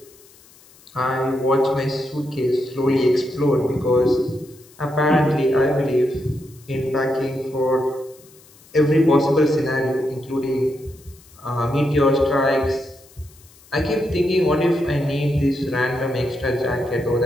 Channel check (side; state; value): left; noise; hiss, 26 dB below the sound